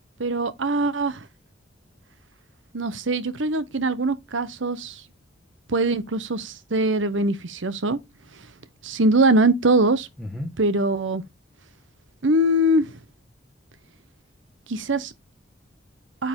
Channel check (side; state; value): both; normal; correlation 0.11